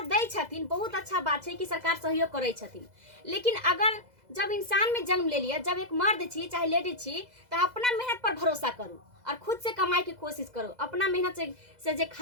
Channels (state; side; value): late; left; 2.0 ms